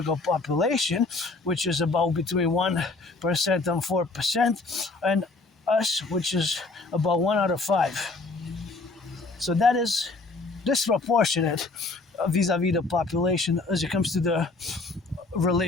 population, which is about between 1% and 4%, and us, which is about 1 out of 5. So that is disproportionate vis-a-vis the population as it comes to the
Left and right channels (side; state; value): right; quieter; 3.5 dB